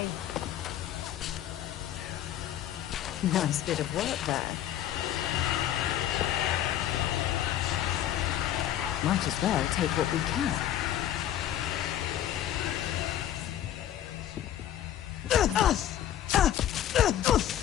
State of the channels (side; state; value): right; quieter; 11.6 dB